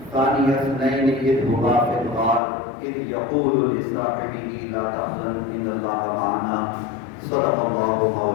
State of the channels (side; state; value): right; drops out; at 2.4 s